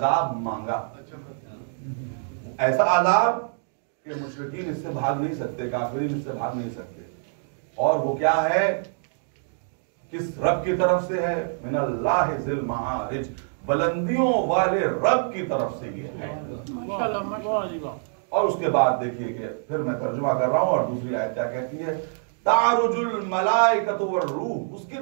मांगा, ऐसा अजाब कि मुशरिकीन इससे भाग नहीं सकते, काफिरीन इससे भाग नहीं सकते। और वो क्या है, किस रब की तरफ से है, मिनल्लाहि ज़िल मारिज, बुलंदियों वाले रब की तरफ से ये है। और उसके बाद देखिए कि फिर मैं तर्जुमा कर रहा हूं और दूसरी आयत क्या कहती है, तारुजुल मलाइकतु वर्रूह, उसकी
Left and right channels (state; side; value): silent; left; digital silence